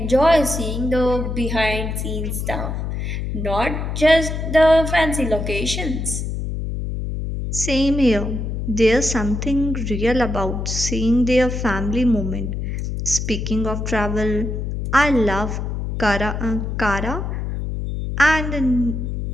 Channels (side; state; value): left; noise; hum, 3 dB below the sound